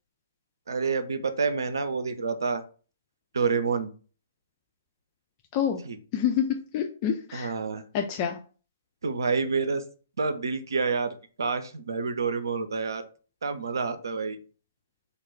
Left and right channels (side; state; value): both; inverted; correlation -0.57